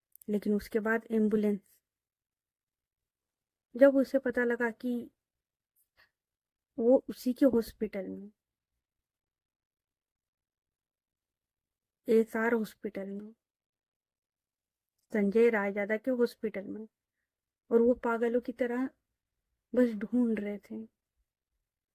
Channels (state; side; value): identical; both; correlation 1.00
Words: लेकिन उसके बाद एम्बुलेंस, जब उसे पता लगा कि वो उसी के हॉस्पिटल में, एसआर हॉस्पिटल में, संजय रायजादा के हॉस्पिटल में, और वो पागलों की तरह बस ढूंढ रहे थे।